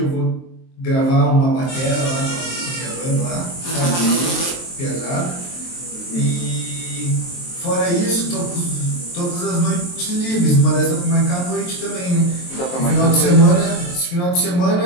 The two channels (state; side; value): late; right; 23 ms